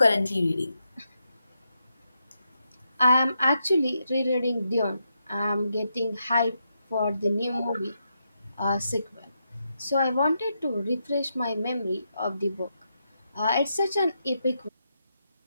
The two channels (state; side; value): inverted; both; correlation -0.83